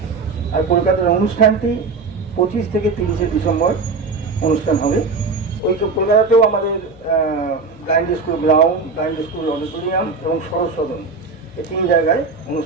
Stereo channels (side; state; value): left; quieter; 4.3 dB